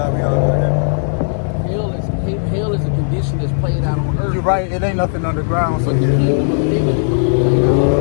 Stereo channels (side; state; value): right; silent; 69 dB below the other